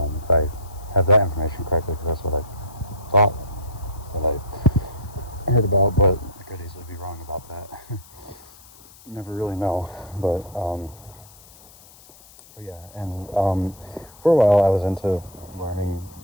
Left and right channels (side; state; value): left; noise; hiss, 23 dB below the sound